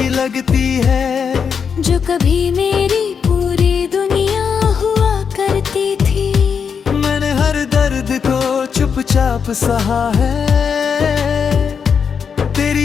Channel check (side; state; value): right; quieter; 6.5 dB